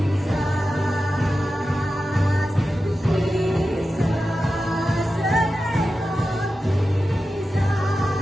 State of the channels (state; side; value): normal; both; correlation 0.92